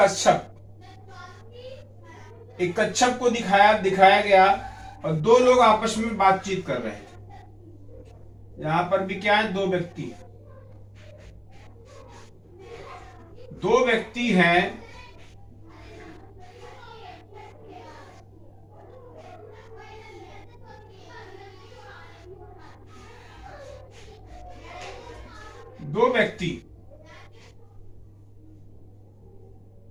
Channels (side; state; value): both; identical; correlation 1.00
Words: एक कच्छप को दिखाया गया और दो लोग आपस में बातचीत कर रहे थे। यहां पर भी क्या है, दो व्यक्ति हैं।